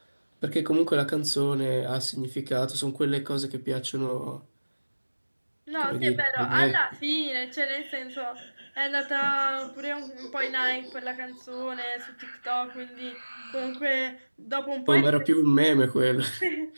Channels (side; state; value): both; inverted; correlation -1.00